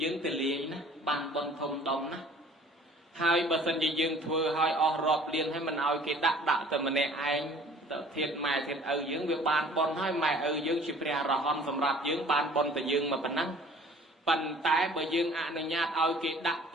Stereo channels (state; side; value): normal; both; correlation 0.51